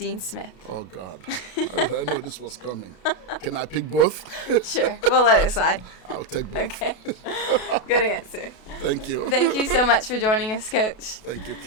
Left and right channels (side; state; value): right; late; 32 ms